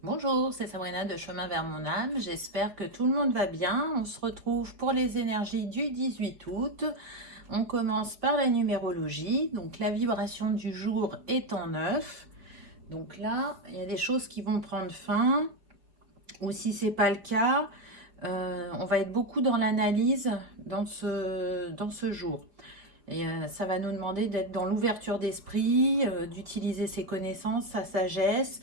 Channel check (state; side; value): late; left; 4.7 ms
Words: Bonjour, c'est Sabrina de Chemin vers mon âme. J'espère que tout le monde va bien. On se retrouve pour les énergies du 18 août. On commence par la numérologie. Donc la vibration du jour est en 9. Donc là, il y a des choses qui vont prendre fin. Ou si ce n'est pas le cas, on va être beaucoup dans l'analyse dans ce jour. Et ça va nous demander d'être dans l'ouverture d'esprit, d'utiliser ses connaissances, sa sagesse,